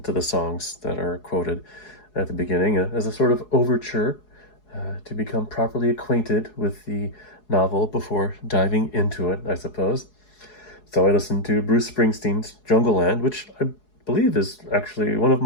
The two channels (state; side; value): late; right; 4.7 ms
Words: to the songs that are quoted at the beginning as a sort of overture to become properly acquainted with the novel before diving into it, I suppose. So I listened to Bruce Springsteen's Jungleland, which I believe is actually one of